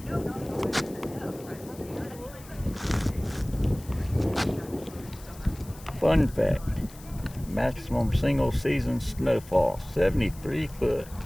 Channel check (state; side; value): noise; left; hiss, 20 dB below the sound